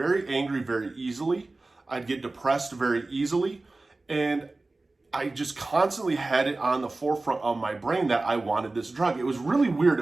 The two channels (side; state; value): left; quieter; 3.2 dB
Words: angry very easily. I'd get depressed very easily. And I just constantly had it on the forefront of my brain that I wanted this drug. It was really weird.